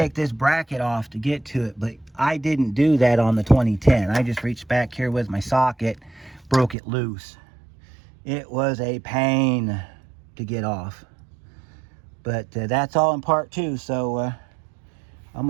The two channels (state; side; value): drops out; left; at 6.8 s